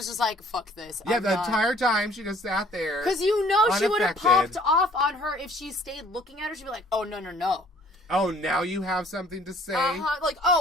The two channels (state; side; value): normal; both; correlation 0.56